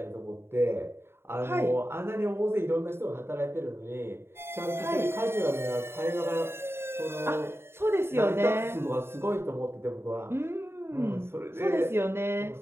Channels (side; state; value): left; late; 0.12 ms